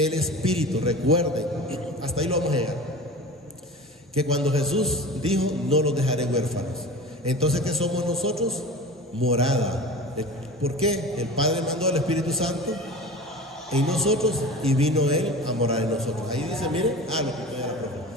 Espíritu. Recuerden, hasta ahí lo vamos a llegar, que cuando Jesús dijo, no los dejaré huérfanos. Entonces, ¿qué somos nosotros? Morada. ¿Por qué? El Padre mandó al Espíritu Santo en nosotros y vino Él a morar en nosotros. Ahí dice, miren, lo que era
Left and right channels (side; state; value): both; normal; correlation 0.35